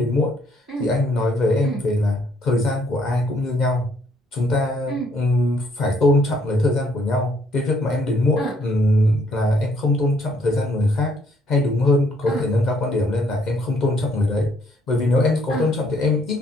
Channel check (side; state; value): both; normal; correlation 0.67